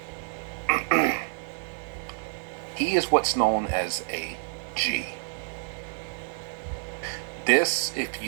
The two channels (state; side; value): silent; left; digital silence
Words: He is what's known as a G. This, if